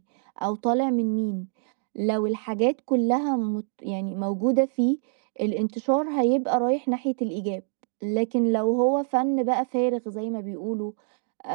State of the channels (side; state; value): left; silent; digital silence